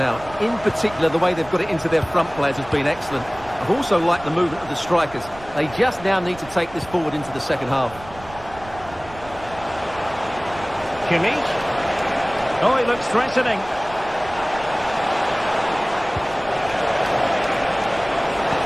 In particular, the way they've got it into their front players has been excellent. I've also liked the movement of the strikers. They just now need to take this forward into the second half. Kimmich. Oh, he looks threatening.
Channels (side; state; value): right; noise; rumble, 18 dB below the sound